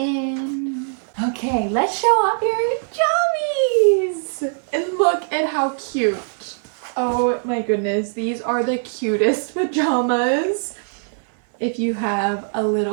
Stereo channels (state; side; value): silent; left; 59 dB below the other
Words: Okay, let's show off your jammies. And look at how cute. Oh my goodness, these are the cutest pajamas. If you have a